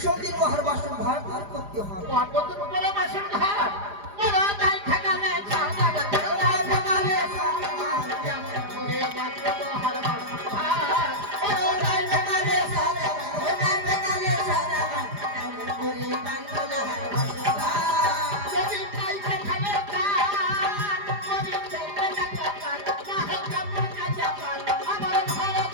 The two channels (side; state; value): left; late; 4.9 ms